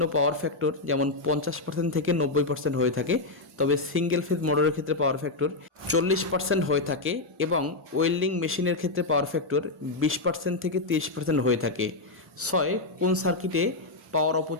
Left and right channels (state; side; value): quieter; right; 3.1 dB